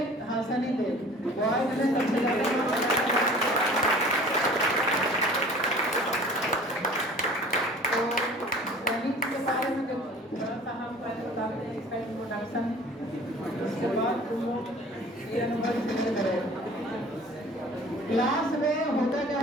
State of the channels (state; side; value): normal; both; correlation 0.46